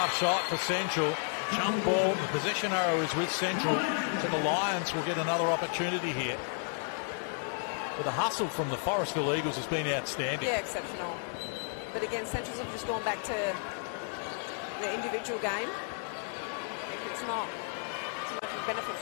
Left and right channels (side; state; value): right; silent; 56 dB below the other